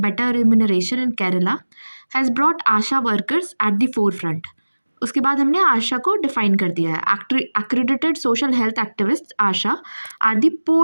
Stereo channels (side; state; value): both; inverted; correlation -1.00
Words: better remuneration in Kerala has brought ASHA workers at the forefront. उसके बाद हमने आशा को डिफाइन कर दिया है। Accredited social health activist ASHA are the